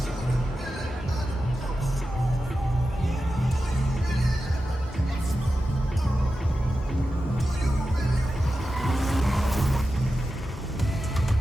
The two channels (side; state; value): both; normal; correlation 0.92